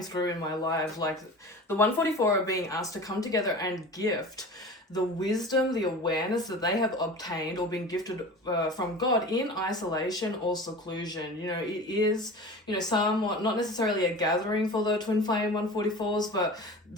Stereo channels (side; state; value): both; normal; correlation 0.36